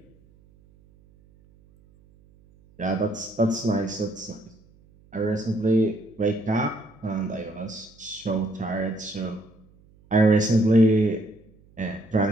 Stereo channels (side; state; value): right; noise; hum, 29 dB below the sound